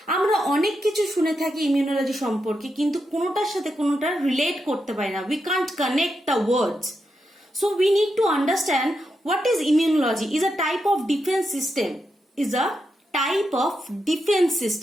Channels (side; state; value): both; normal; correlation 0.85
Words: আমরা অনেক কিছু শুনে থাকি ইমিউনোলজি সম্পর্কে কিন্তু কোনোটার সাথে কোনোটা রিলেট করতে পারি না। We can't connect the words. So we need to understand what is immunology. Is a type of defence system, is a type of defence